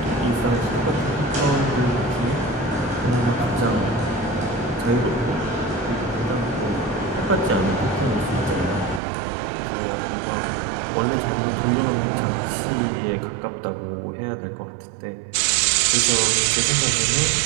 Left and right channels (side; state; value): left; drops out; at 9.0 s